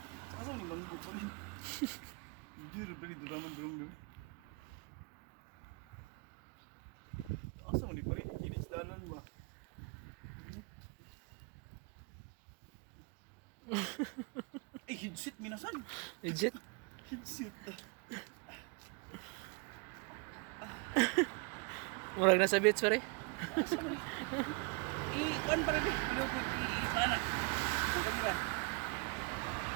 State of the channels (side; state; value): left; quieter; 31.6 dB